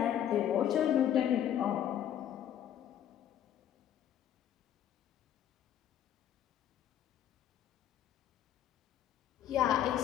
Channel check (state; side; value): quieter; right; 10.6 dB